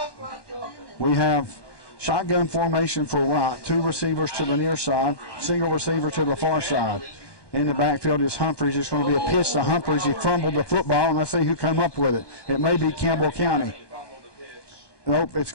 We have shotgun formation for right. 2 receivers to the near side, single receiver to the far side. In the backfield is Humphreys. It's going to be a pitch to Humphreys. He fumbled the football, and let's see who come up with it. It may be Campbell County. Nope, it's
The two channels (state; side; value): late; right; 1.2 ms